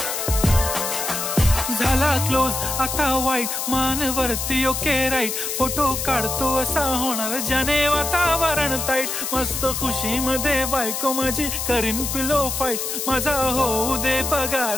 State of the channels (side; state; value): left; noise; hiss, 3 dB below the sound